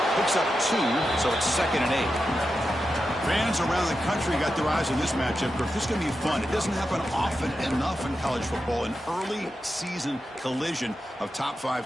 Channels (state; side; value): normal; both; correlation 0.89